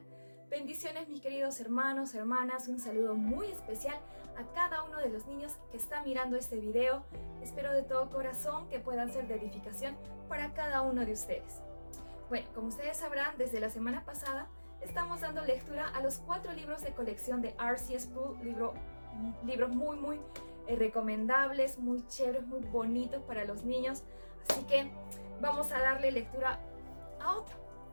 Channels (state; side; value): inverted; both; correlation -1.00